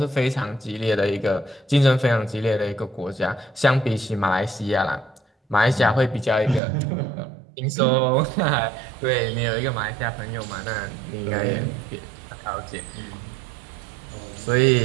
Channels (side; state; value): left; drops out; at 6.6 s